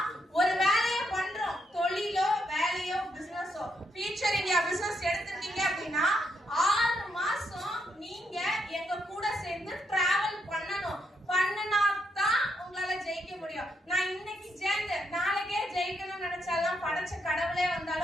ஒரு வேலையை பண்றோம், தொழிலோ வேலையோ பிசினஸோ, ஃபியூச்சர் இந்தியா பிசினஸ் எடுத்துட்டீங்க அப்படின்னா 6 மாசம் நீங்க எங்க கூட சேர்ந்து டிராவல் பண்ணணும். பண்ணனாதான் உங்களால ஜெயிக்க முடியும். நான் இன்னைக்கு சேர்ந்து நாளைக்கே ஜெயிக்கணும்னு நினைச்சாலும் படைச்ச கடவுளே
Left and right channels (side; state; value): both; normal; correlation 0.78